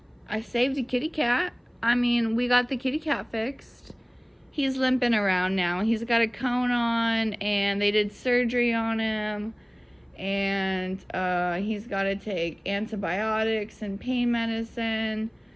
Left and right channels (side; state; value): both; identical; correlation 1.00